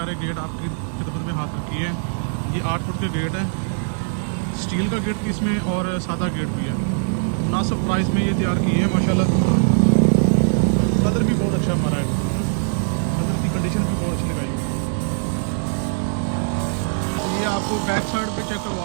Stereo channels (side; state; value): left; silent; 64 dB below the other